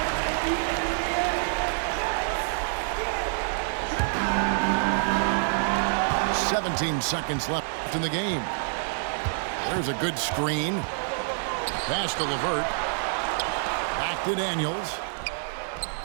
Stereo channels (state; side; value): silent; left; 60 dB below the other